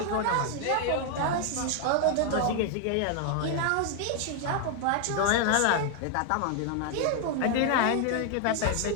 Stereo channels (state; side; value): different; both; correlation 0.00